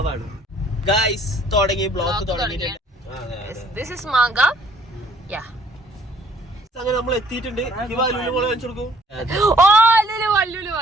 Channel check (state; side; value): normal; both; correlation 0.60